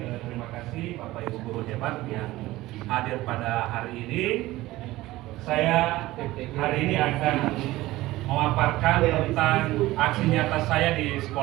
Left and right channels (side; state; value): left; quieter; 17.6 dB